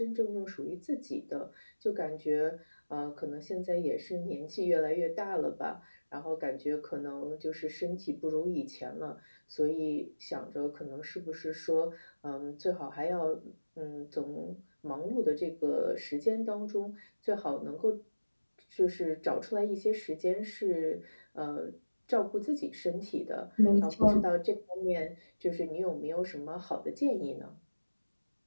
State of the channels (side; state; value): both; inverted; correlation -1.00